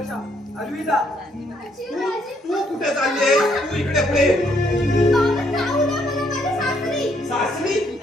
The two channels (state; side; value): normal; both; correlation 0.70